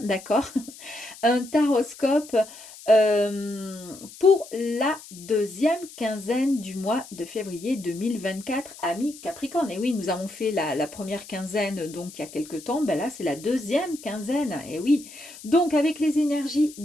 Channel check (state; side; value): noise; left; hiss, 17 dB below the sound